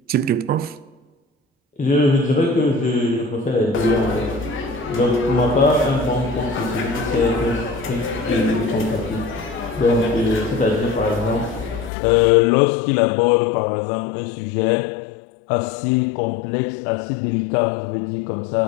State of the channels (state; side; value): drops out; right; at 11.9 s